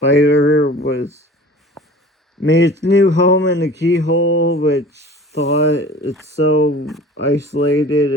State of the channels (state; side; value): normal; both; correlation 0.42